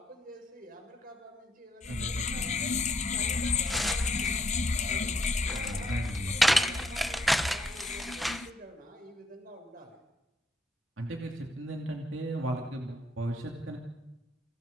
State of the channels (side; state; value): both; normal; correlation 0.74